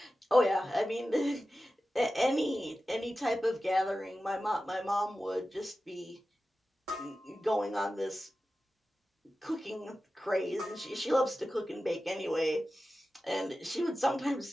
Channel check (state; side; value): normal; both; correlation 0.94